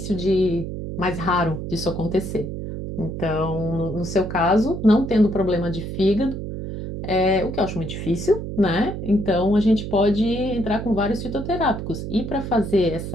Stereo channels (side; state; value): right; noise; hum, 6 dB below the sound